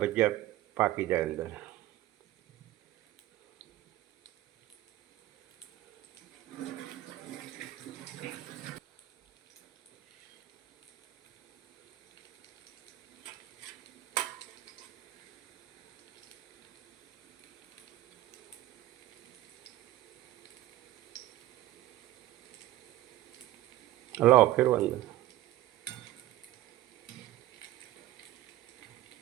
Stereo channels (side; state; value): left; quieter; 15.5 dB